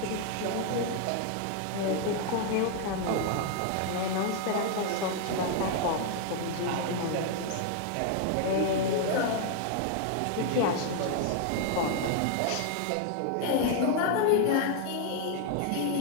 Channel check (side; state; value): both; different; correlation 0.00